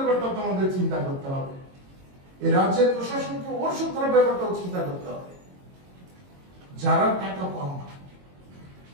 তো আমাদের চিন্তা করতে হবে, এই রাজ্যের প্রশাসনকে ওর সুরক্ষার ব্যাপারটাও চিন্তা করতে হবে। যারা টাকা পান না,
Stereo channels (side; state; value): left; late; 22 ms